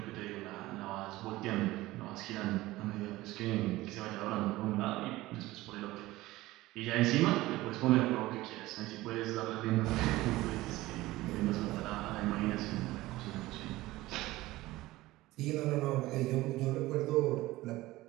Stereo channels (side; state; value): left; quieter; 18.1 dB